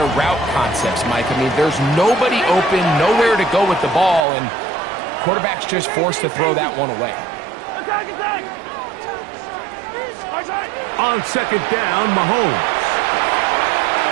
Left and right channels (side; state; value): left; drops out; at 4.2 s